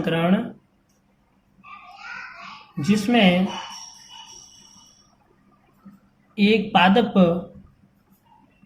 जिसमें एक पादप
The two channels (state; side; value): identical; both; correlation 1.00